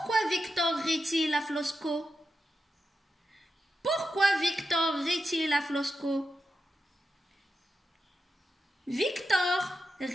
Victor rit-il à Flosko? Pourquoi Victor rit-il à Flosko? Victor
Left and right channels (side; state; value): both; normal; correlation 0.88